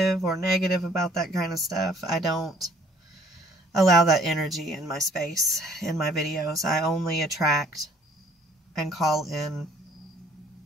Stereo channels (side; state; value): both; normal; correlation 0.58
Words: or negative about that kind of stuff, I don't allow that energy in my space, in my videos. I only attract and call in